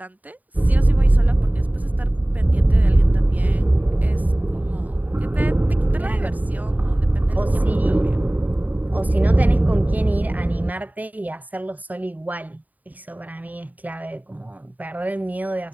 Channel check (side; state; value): left; late; 0.078 ms